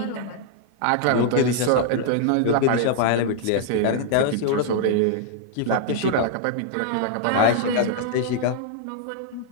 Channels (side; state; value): both; different; correlation -0.01